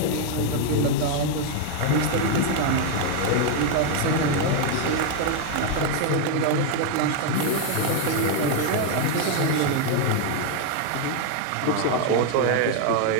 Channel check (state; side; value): different; both; correlation 0.00